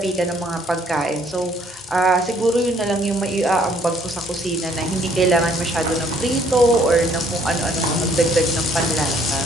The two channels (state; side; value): normal; both; correlation 0.63